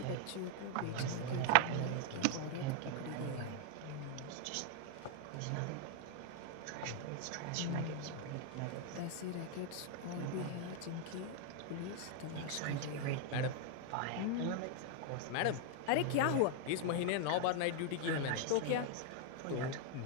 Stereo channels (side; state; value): both; different; correlation 0.00